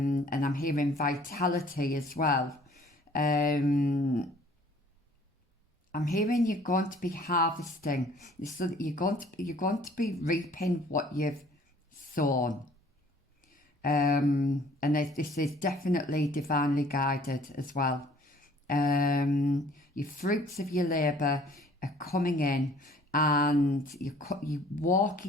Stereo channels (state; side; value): normal; both; correlation 0.55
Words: I'm hearing vitality as well. I'm hearing you're going to be harvesting. So you're going to be reaping what you've sown. And this is definitely divinely guided as well. Your fruits of your labour are coming in, and you're